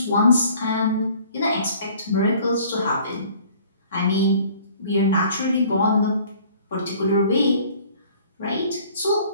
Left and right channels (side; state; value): both; inverted; correlation -0.53